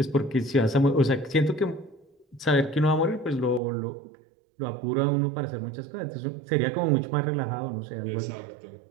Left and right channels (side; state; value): left; drops out; at 3.6 s